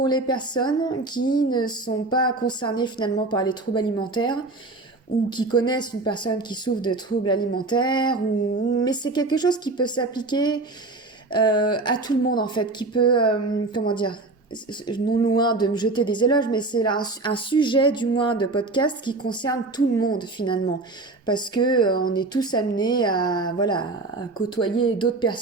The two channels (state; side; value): quieter; left; 3.3 dB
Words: les personnes qui ne sont pas concernées finalement par les troubles alimentaires ou qui connaissent une personne qui souffre de troubles alimentaires mais c'est quelque chose qui peut s'appliquer à tout le monde en fait, qui peut comment dire, non loin de me jeter des éloges, mais c'est là un sujet du moins de podcast qui concerne tout le monde finalement, parce que on est tous amenés à voilà à côtoyer d'autres